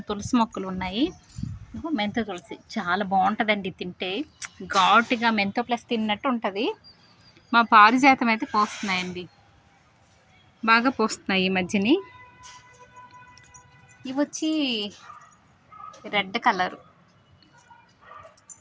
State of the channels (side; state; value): both; identical; correlation 1.00